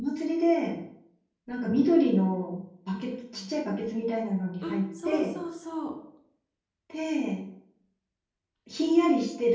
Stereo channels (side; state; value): both; identical; correlation 1.00